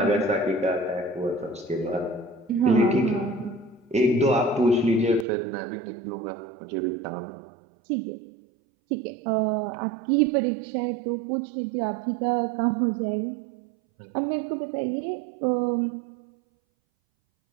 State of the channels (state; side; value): drops out; left; at 5.2 s